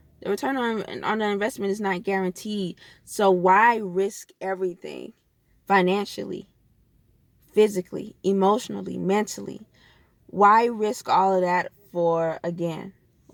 the return on the investment is not guaranteed. So why risk everything financially, physically, emotionally, mentally? Why risk all of that for, again,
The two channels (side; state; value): both; identical; correlation 1.00